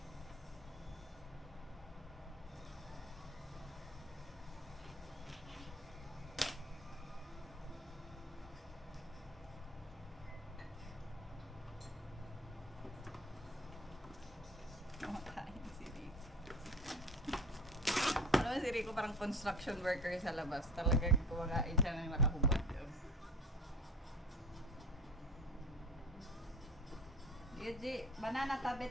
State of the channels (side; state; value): both; normal; correlation 0.39